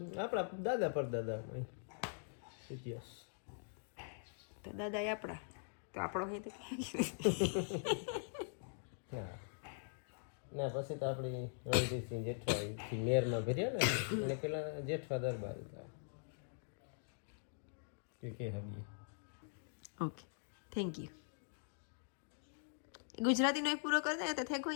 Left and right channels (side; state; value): right; silent; digital silence